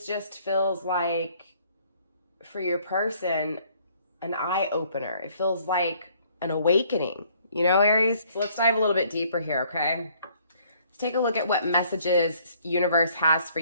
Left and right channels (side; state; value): both; inverted; correlation -0.62